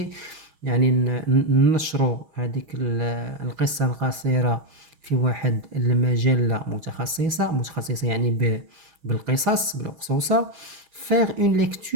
يعني ننشروا هذيك القصة القصيرة في واحد المجلة متخصصة يعني بالقصص بالأقصوصة. faire une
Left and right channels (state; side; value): late; left; 6.3 ms